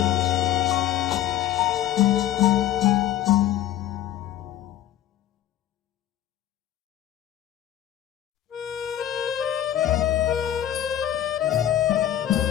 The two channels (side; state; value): right; quieter; 12.1 dB